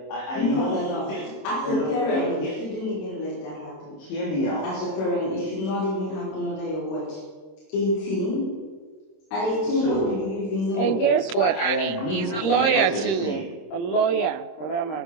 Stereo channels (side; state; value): right; late; 26 ms